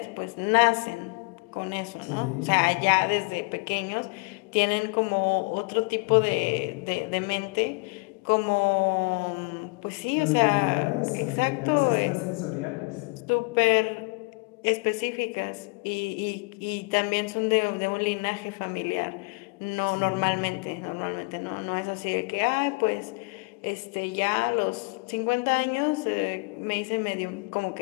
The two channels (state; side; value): quieter; right; 30.2 dB